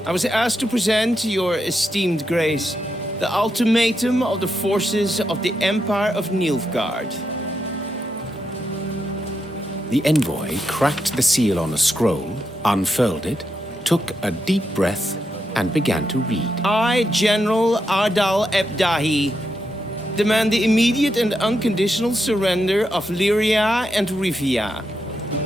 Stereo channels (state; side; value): normal; both; correlation 0.84